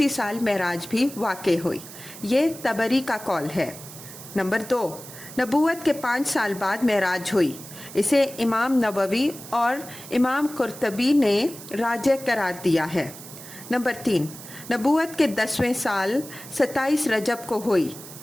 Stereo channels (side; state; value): right; noise; hiss, 15 dB below the sound